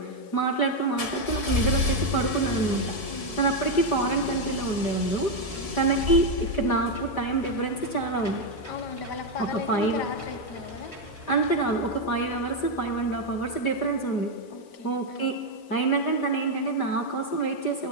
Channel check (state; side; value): late; right; 5.1 ms